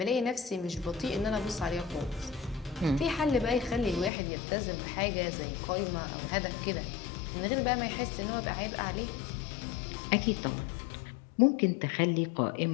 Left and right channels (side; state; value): right; drops out; at 4.1 s